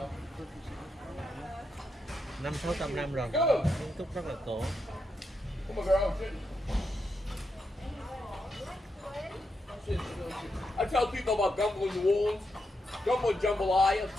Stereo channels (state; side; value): normal; both; correlation 0.83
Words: 500-600 năm rồi, kiến trúc rất là cổ. Come on, girl. I tell people about gumbo in New Orleans. Gumbo and jambalaya,